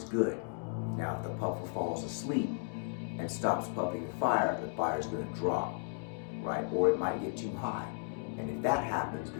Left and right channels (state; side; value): silent; right; digital silence